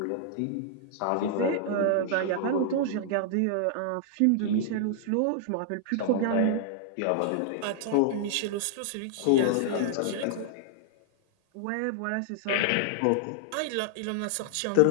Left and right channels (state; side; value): different; both; correlation -0.01